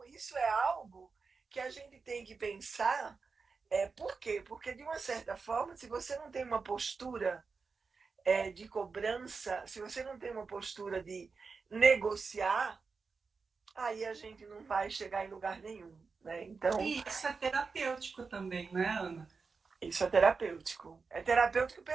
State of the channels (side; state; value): left; quieter; 4.8 dB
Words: isso é algo que a gente tem que pensar. Por quê? Porque, de uma certa forma, se você não tem uma postura de cobrança, se você não tem uma postura de negociar, aí a gente não vai chegar em lugar nenhum, né? Então, E isso é terapêutico também, né, Ana? isso é terapêutico. É terapêutico